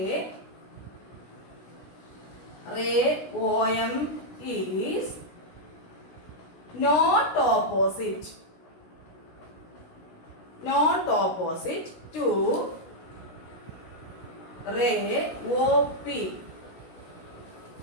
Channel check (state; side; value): late; right; 16 ms